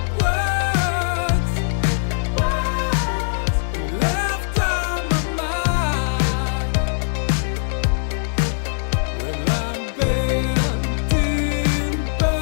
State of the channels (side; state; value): right; silent; digital silence